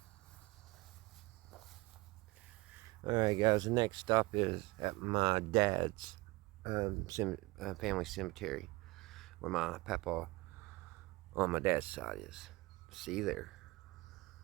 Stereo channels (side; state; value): left; quieter; 22.5 dB